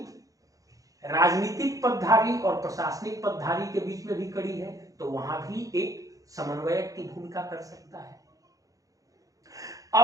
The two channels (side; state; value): left; late; 0.17 ms